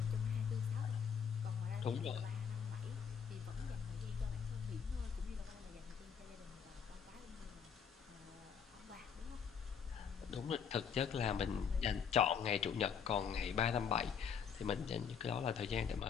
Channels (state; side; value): quieter; right; 7.0 dB